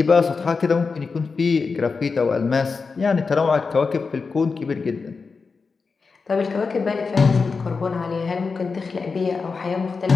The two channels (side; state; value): right; quieter; 4.7 dB